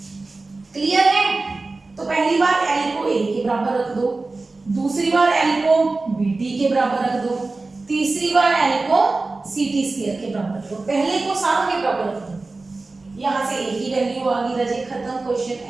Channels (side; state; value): left; quieter; 3.5 dB